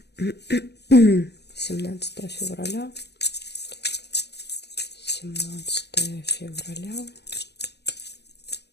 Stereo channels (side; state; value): right; late; 0.49 ms